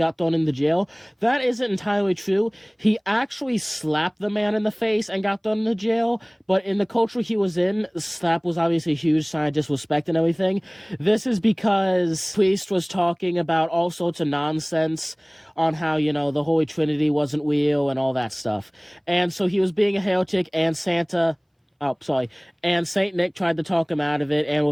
thrown into jail. That isn't entirely true. He actually slapped the man in the face and got thrown into jail, but in the culture he was in, the slap was obviously a huge sign of disrespect and everything. This is because priest was talking about all sorts of nonsense on how, the Holy Trinity wasn't real and all that stuff. And so he was being a heretic, and and Saint Nick tried to talk him out of it and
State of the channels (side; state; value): both; identical; correlation 1.00